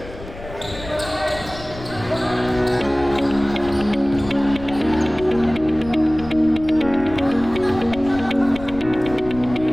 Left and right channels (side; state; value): left; noise; rumble, 14 dB below the sound